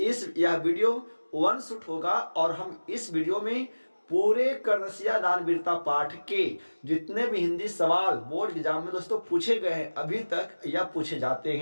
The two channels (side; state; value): both; inverted; correlation -1.00